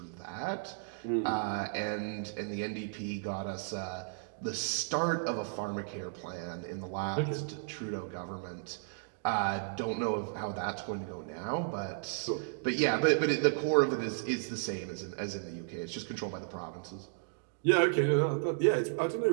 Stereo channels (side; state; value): left; silent; digital silence